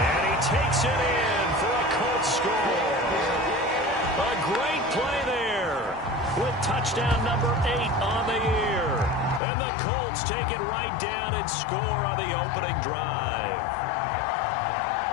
And he takes it in for a Colts score. A great play there with touchdown number 8 on the year. And the Colts take it right down and score on the opening drive.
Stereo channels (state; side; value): drops out; right; at 9.4 s